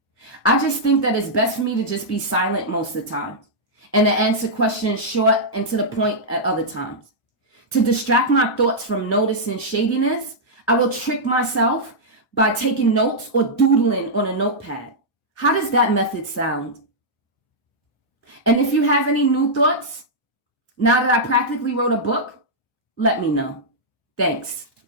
I just think that it's best for me to just be silent most of the time and to answer questions short and to the point at other times. To distract my thoughts from noticing shadiness, I will trick myself by taking notes or doodling on a notepad. How does that method sound? And if you have any new thoughts, now that I practically wrote a book, let me know. Thanks.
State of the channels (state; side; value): late; right; 1.0 ms